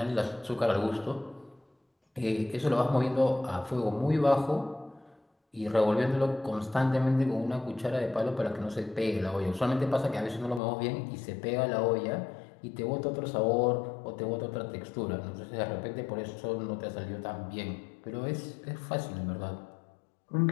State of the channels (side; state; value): right; drops out; at 10.6 s